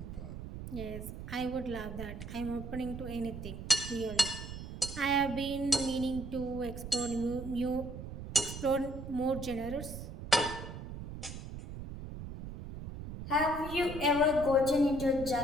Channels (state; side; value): noise; right; rumble, 9 dB below the sound